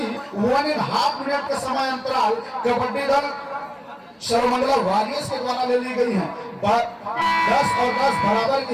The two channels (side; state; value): both; identical; correlation 1.00